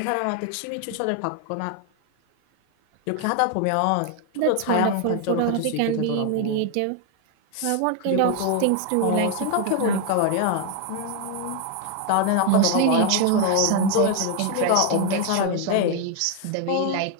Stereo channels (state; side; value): different; both; correlation 0.01